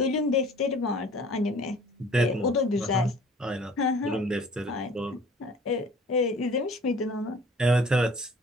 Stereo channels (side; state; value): both; normal; correlation 0.49